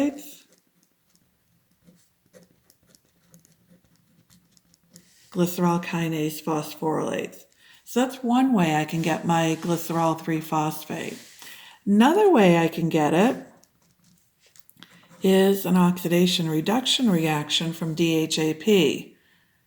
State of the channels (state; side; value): identical; both; correlation 1.00